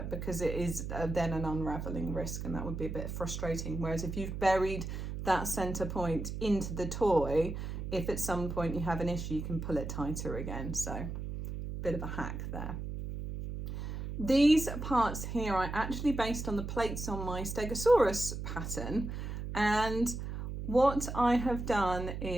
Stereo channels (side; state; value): right; noise; hum, 6 dB below the sound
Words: because it is then an unraveling risk, and that would be a bit frustrating. Whereas if you've buried that center point into the toy, if at some point you have an issue, you can pull it tighter again. So bit of a hack there. These parts here I actually based on the plates on my Stegosaurus pattern, And what I have done